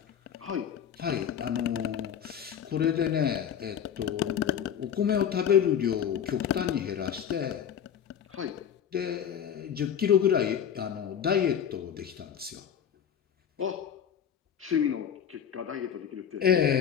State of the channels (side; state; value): right; quieter; 8.7 dB